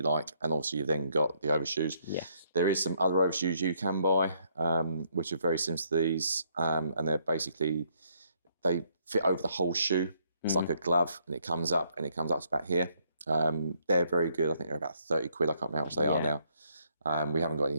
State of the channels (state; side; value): inverted; both; correlation -0.70